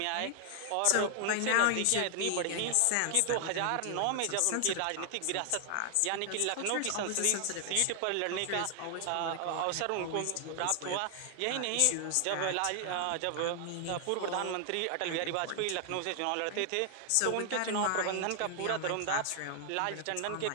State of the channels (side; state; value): both; different; correlation 0.00